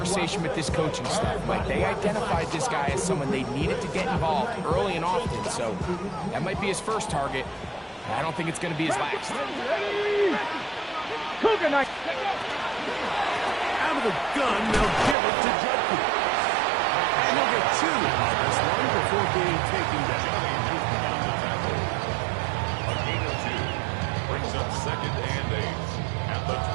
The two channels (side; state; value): left; drops out; at 15.2 s